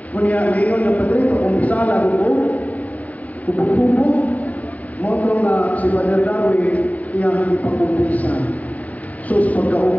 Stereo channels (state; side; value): late; right; 0.072 ms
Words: Kunya ngayon na padre pa umpisa na kubog-kubog. Motong na si Father Darwin niya ipag-umpisa. Sus